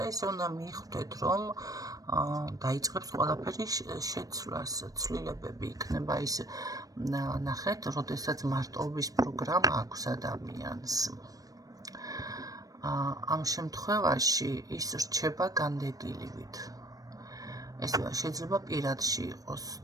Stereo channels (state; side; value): late; left; 0.18 ms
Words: ესე უნდა მიხვდეთ, რომ დაიწყებს ყველაფერი შეცვლას, ცვლილებები იქნება ის, ნახეთ, როდესაც მარტოობის პროგრამა აქვს ადამიანს. ამ შემთხვევაში ის რჩება განდეგილივით. ეს შეიძლება პირადში იყოს